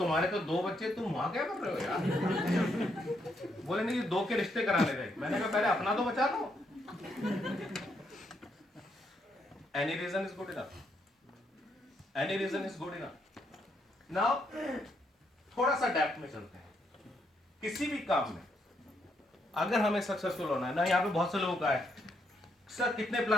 तो 2 बच्चे, तुम वहां क्या कर रहे हो यार? बोले नहीं 2 के रिश्ते कराने थे। मैंने कहा पहले अपना तो बचा लो। Any reason is good enough, any reason is good enough. Now थोड़ा सा डेप्थ में चलते हैं। किसी भी काम में अगर हमें सक्सेसफुल होना है ना, यहाँ पे बहुत से लोगों का है सर कितने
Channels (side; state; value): both; normal; correlation 0.76